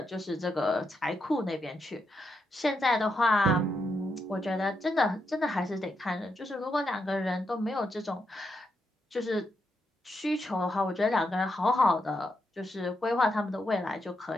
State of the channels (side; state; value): both; normal; correlation 0.82